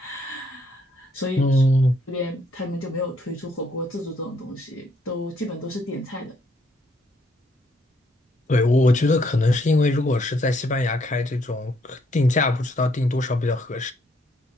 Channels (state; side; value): normal; both; correlation 0.70